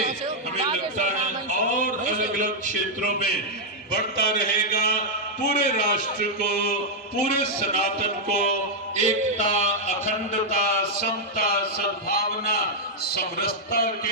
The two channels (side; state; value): both; normal; correlation -0.04